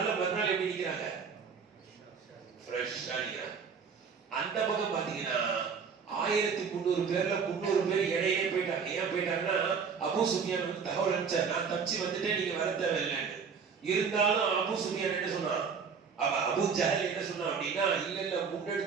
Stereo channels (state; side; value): quieter; left; 6.0 dB